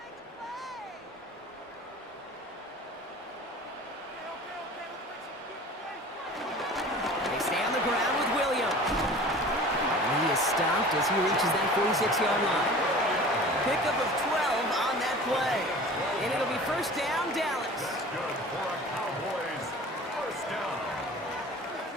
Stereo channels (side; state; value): both; normal; correlation 0.41